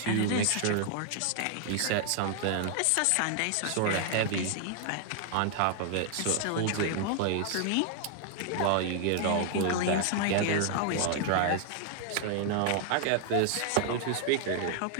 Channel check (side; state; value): both; different; correlation 0.00